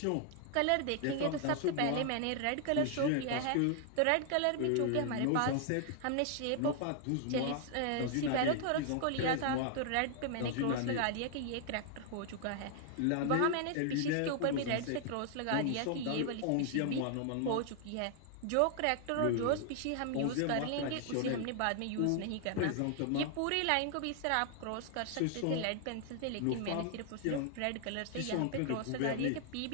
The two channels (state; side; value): different; both; correlation 0.00